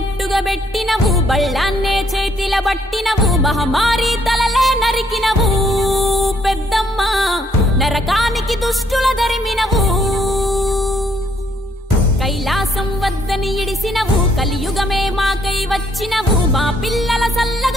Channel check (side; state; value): both; normal; correlation 0.69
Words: పెట్టినవు, బళ్ళాన్నే చేతిల బట్టినవు, మహమారి తలలే నరికినవు పెద్దమ్మ, నరకానికి దుష్టుల దరిమినవు. కైలాసం వద్దని ఇడిసినవు, కలియుగమే మాకై వచ్చినవు, మా పిల్లల